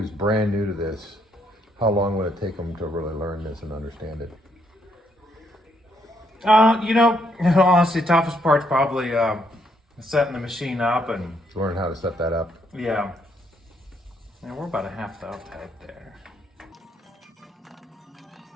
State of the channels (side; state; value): both; normal; correlation 0.73